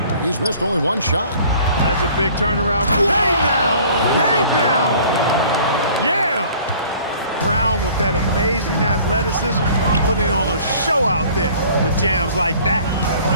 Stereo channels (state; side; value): inverted; both; correlation -0.51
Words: He's missed only one shot. That's a big turnaround. Hey now! Hey now! Yeah! Brown with that amazing athleticism, putting on a show out there with jams like that.